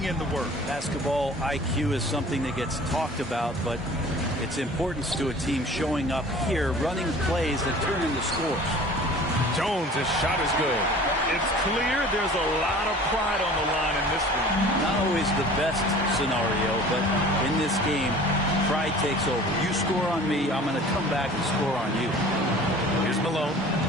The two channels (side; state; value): both; normal; correlation 0.45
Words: in the work. Basketball IQ is something that gets talked about, but its importance to a team showing up here, running plays that turn into scores. Jones' shot is good. It's clear there's a lot of pride on the line in this one. Not always the best scenario, but in this game, pride takes over. You score on me, I'm going to come back and score on you. Here's Malone.